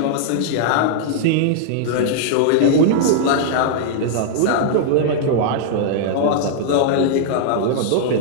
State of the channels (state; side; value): different; both; correlation -0.01